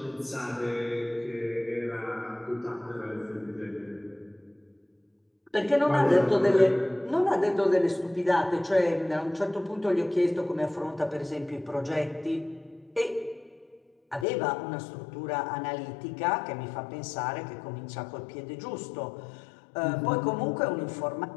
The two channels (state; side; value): drops out; right; at 14.2 s